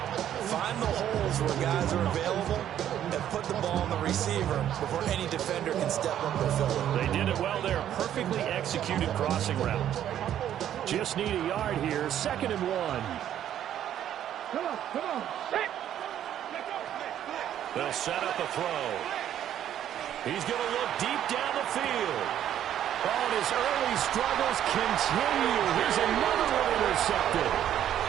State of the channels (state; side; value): quieter; left; 10.8 dB